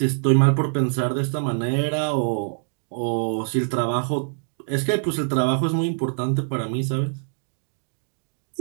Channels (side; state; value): left; silent; digital silence